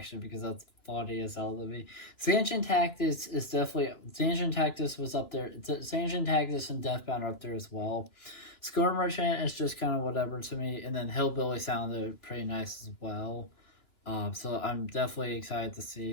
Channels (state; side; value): late; right; 2.9 ms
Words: because that's funny as hell to me. Sanchin Tactics is definitely Sanchin Tactics was up there. Sanchin Tactics and Deathbound are up there as well. Score Merchant is just kind of whatever to me, and then Hillbilly sounded pretty nice as well. So I'm definitely excited to